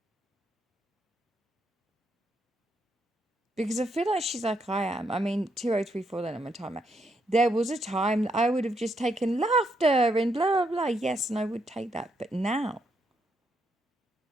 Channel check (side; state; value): both; normal; correlation 0.77